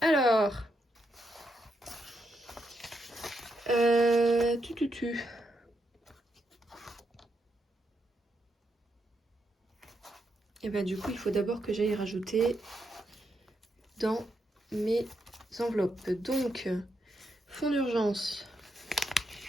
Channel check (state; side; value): normal; both; correlation 0.81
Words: Alors. Tu. Et bah du coup il faut d'abord que j'aille rajouter dans mes enveloppes. Donc fonds d'urgence.